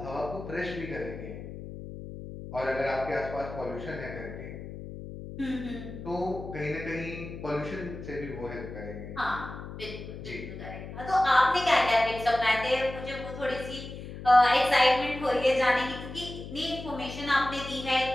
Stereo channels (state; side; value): noise; left; hum, 11 dB below the sound